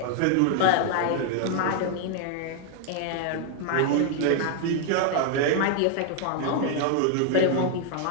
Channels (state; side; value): different; both; correlation 0.00